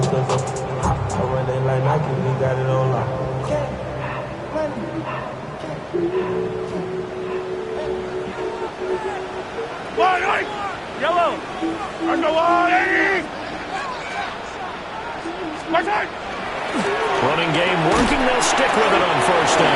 Yellow! Running game working. They'll stick with it on first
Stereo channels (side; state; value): both; identical; correlation 1.00